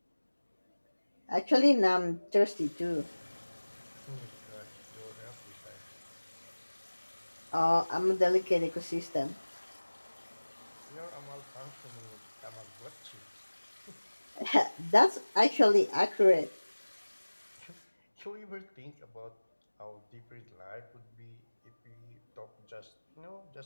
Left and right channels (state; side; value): inverted; both; correlation -1.00